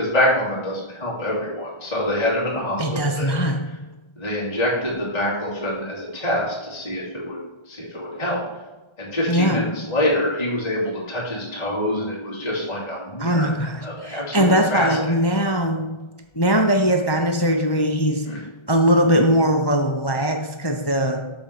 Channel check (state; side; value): late; right; 1.1 ms